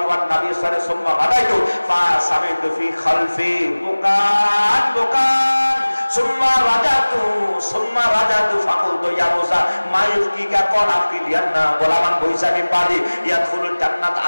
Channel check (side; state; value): both; inverted; correlation -1.00